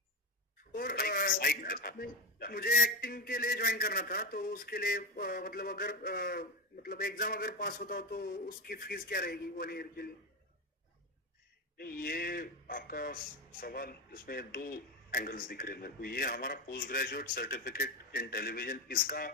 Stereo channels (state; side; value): normal; both; correlation 0.18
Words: और मुझे एक्टिंग के लिए ज्वाइन करना था, तो उसके लिए मतलब अगर मतलब एग्जाम अगर पास होता हो तो उसकी फीस क्या रहेगी 1 ईयर के लिए? ये आपका सवाल, इसमें 2 एंगल्स दिख रहे हैं मेरे को. ये हमारा post graduate certificate in television, इसका